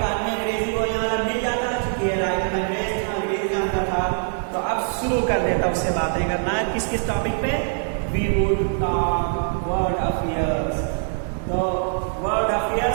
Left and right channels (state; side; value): silent; left; 63 dB below the other